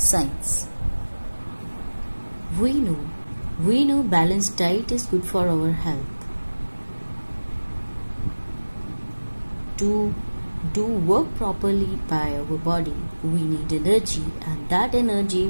We know balanced diet is good for our health. To do work properly by our body, we need energy, and that energy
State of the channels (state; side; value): inverted; both; correlation -1.00